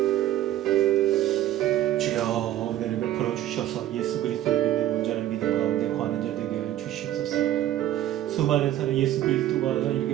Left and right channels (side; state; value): left; quieter; 12.9 dB